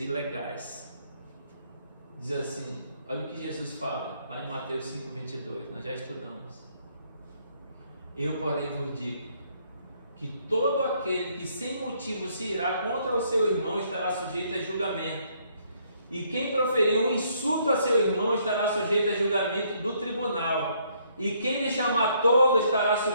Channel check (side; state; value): both; inverted; correlation -0.68